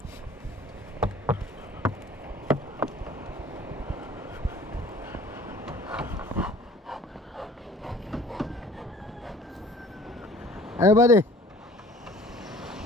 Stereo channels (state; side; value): normal; both; correlation 0.50